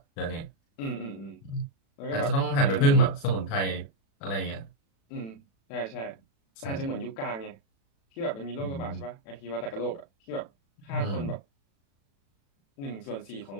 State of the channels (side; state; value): right; late; 36 ms